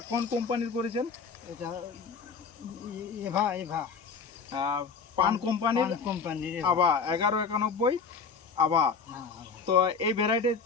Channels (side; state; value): right; quieter; 5.4 dB